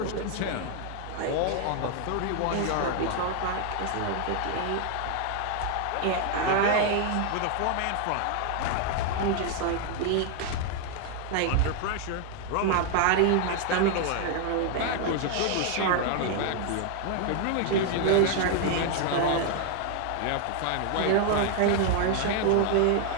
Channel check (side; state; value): both; different; correlation 0.00